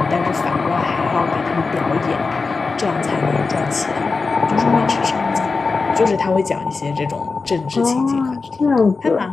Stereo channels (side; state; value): right; quieter; 4.3 dB